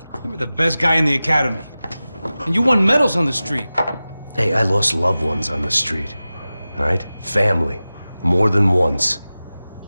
You were the best guy in the academy. And you won medals on the street. Hey, I lost loved ones on the street. All right? Family. More than once.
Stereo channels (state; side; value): inverted; both; correlation -0.96